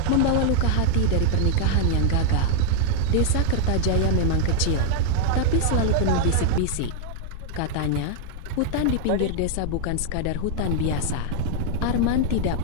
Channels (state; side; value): different; both; correlation 0.00